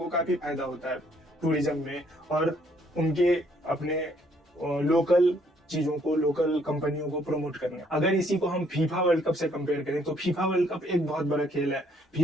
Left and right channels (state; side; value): normal; both; correlation 0.67